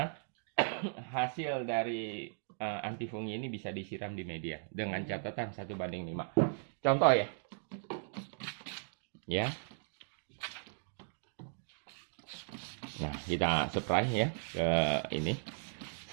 hasil dari antifungi ini bisa disiram di media dengan catatan 1:5. Contoh ya. Ya. Nah, kita spray ya ke ini.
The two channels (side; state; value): left; silent; digital silence